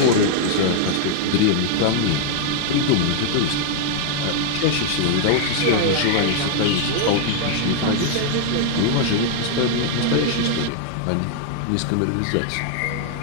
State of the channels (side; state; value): both; different; correlation 0.00